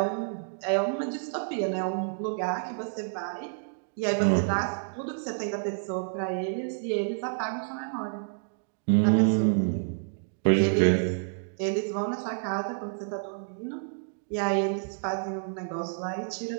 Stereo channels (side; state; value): left; silent; digital silence